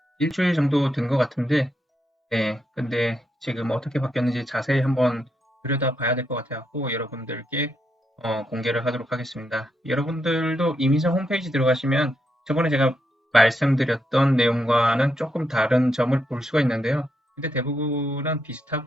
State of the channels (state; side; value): normal; both; correlation 0.81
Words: 일주일 정도 된 것 같은데, 네, 근데 지금 어떻게 바뀌었는지 자세히 한번 들여다 봐야 될 것 같아서 여러분들께 공개를 하도록 하겠습니다. 여러분들도 이민성 홈페이지 들어가시면 저번에 제가 말씀드렸던 내용과는 조금 다른 점을 볼 수가 있는데요. 근데 대부분은